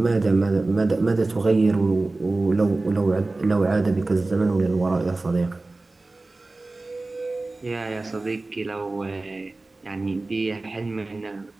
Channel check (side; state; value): left; quieter; 3.2 dB